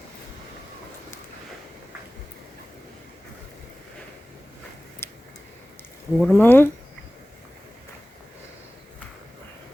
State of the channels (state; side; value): normal; both; correlation 0.98